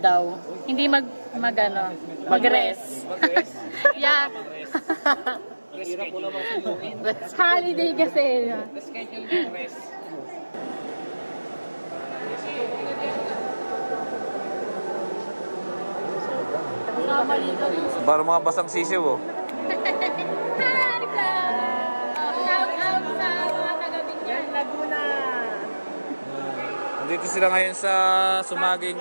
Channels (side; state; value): both; inverted; correlation -1.00